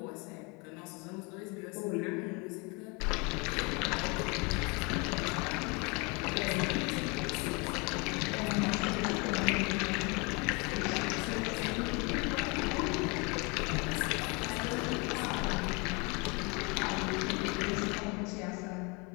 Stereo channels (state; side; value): quieter; right; 29.7 dB